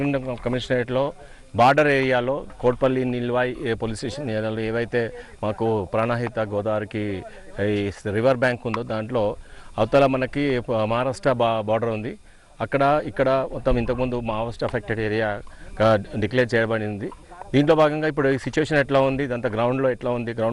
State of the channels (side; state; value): both; identical; correlation 1.00